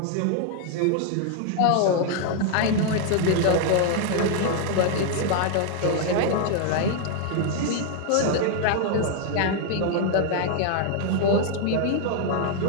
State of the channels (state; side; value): different; both; correlation 0.00